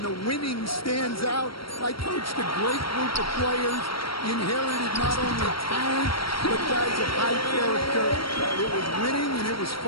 the winning stands out. I coached a great group of players, inherited not only talent, but guys of high character. It was winning, and it was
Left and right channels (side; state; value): right; late; 0.74 ms